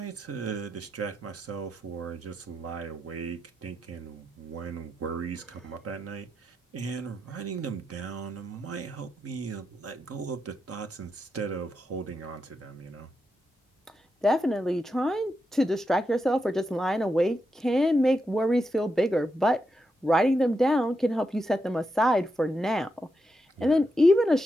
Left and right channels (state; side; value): normal; both; correlation 0.85